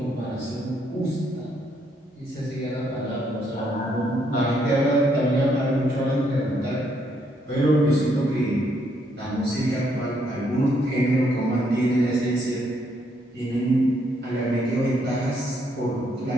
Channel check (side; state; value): both; normal; correlation 0.73